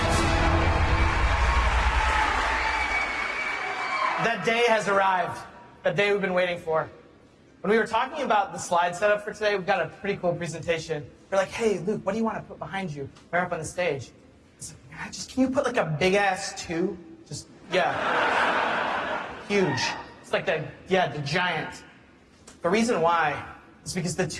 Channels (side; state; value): both; identical; correlation 1.00